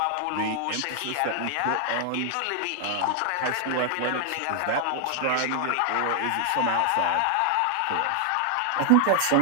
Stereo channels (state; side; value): different; both; correlation 0.00